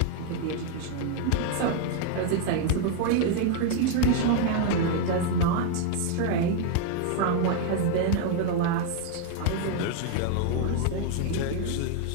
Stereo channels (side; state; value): both; different; correlation 0.00